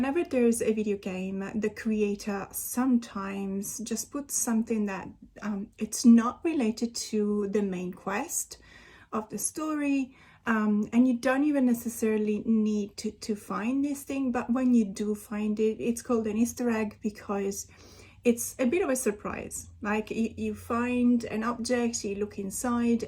there's a video game, the creator sometimes just puts something that it's not related to the main quest of the story, and you don't even necessarily need to find this thing, but when you do find it, it's called an Easter egg because it's a bit of a surprise. Like you find an object, you look inside,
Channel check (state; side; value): identical; both; correlation 1.00